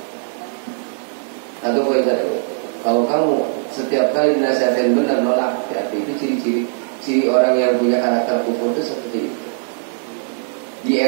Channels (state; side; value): silent; left; digital silence